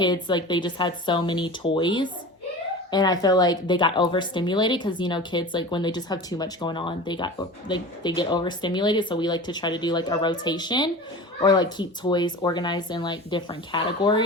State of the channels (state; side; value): normal; both; correlation 0.35